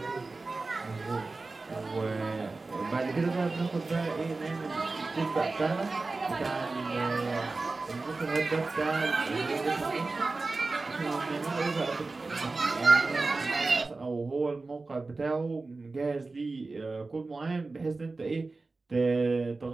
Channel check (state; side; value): quieter; left; 3.6 dB